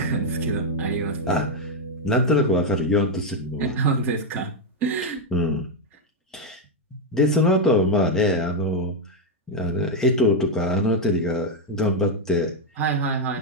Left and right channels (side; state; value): both; normal; correlation 0.01